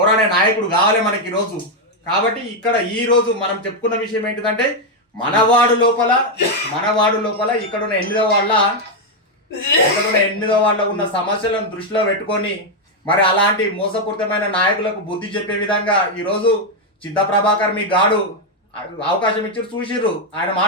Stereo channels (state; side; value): normal; both; correlation 0.02